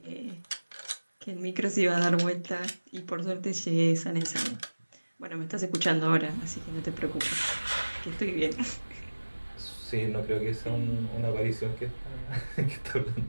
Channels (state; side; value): inverted; both; correlation -1.00